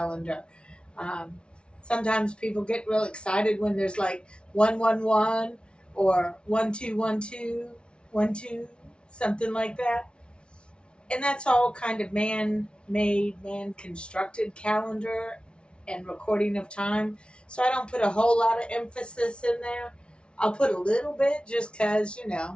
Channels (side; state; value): right; late; 0.057 ms